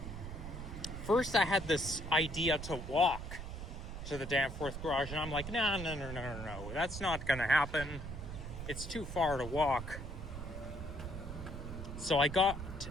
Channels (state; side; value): noise; right; rumble, 8 dB below the sound